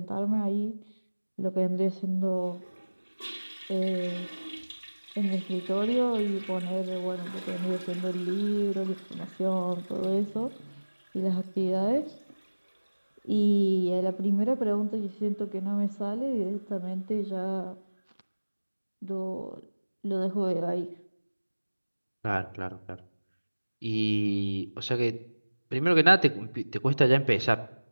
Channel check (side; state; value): both; inverted; correlation -1.00